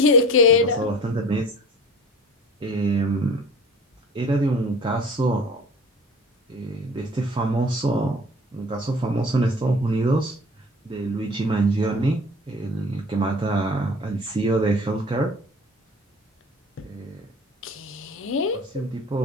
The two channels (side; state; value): both; normal; correlation 0.43